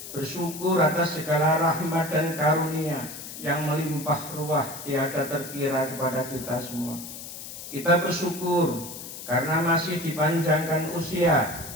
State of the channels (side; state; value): left; noise; hiss, 11 dB below the sound